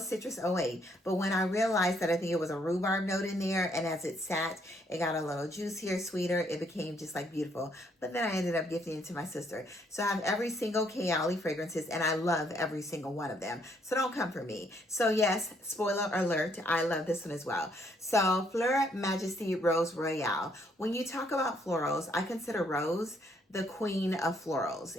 Citrus 08. But when I realized that I think it was a rhubarb note in there, and as it sat, it got a little juicier, sweeter, it became just like beautiful. But then I ended up gifting it to my sister. So I have every single KAYALI fragrances, and I love every single one of them. So don't come for me. So yes, spoiler alert, I love this one as well. So Fleur Majesty Rose Royale. When you talk about florals, I consider Rose the queen of florals,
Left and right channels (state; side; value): normal; both; correlation 0.69